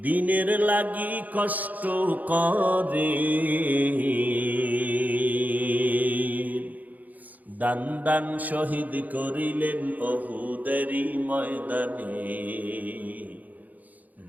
দিনের লাগি কষ্ট করে, দান দান শহীদ করিলেন উহুদেরই ময়দানে,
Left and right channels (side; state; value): left; late; 0.080 ms